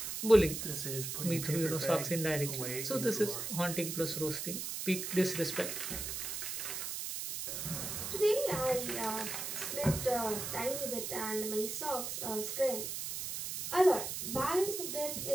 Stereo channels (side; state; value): right; noise; hiss, 4 dB below the sound